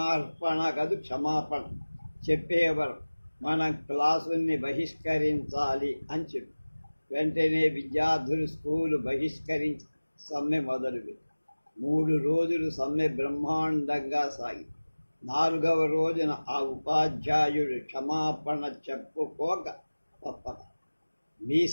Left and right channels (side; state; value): both; inverted; correlation -1.00